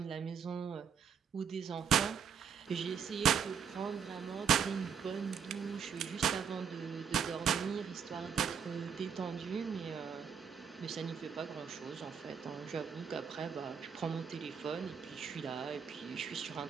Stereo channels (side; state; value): left; quieter; 7.0 dB